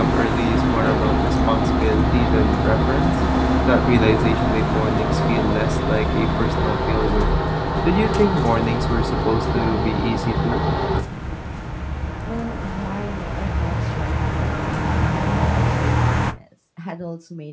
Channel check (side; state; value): both; identical; correlation 1.00